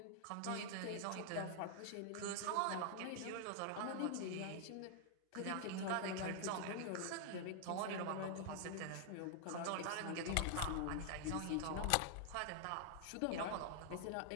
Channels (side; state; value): both; different; correlation 0.00